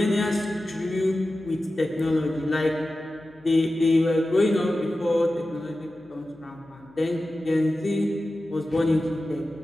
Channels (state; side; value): noise; left; hum, 29 dB below the sound